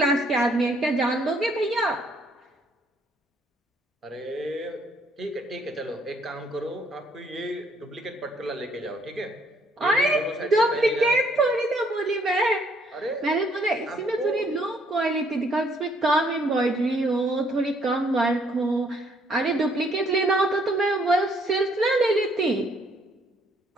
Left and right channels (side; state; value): both; normal; correlation 0.66